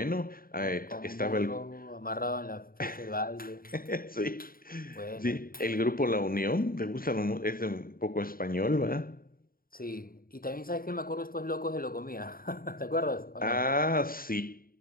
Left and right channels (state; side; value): late; right; 0.42 ms